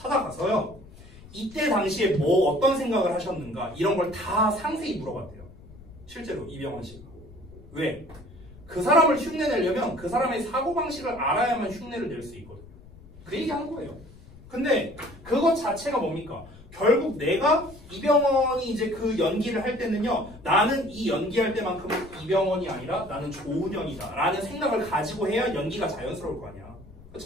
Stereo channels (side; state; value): left; noise; rumble, 20 dB below the sound